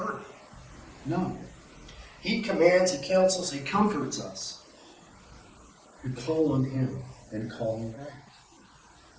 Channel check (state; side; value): identical; both; correlation 1.00